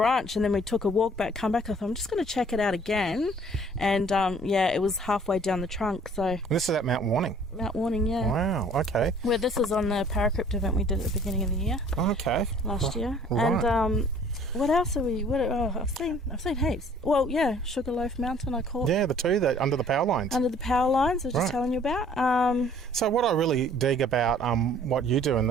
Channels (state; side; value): normal; both; correlation 0.54